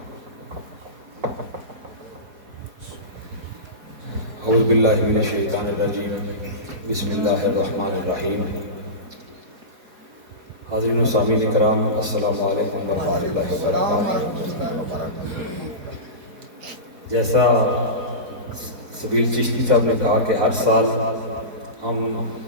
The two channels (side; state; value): left; late; 4.4 ms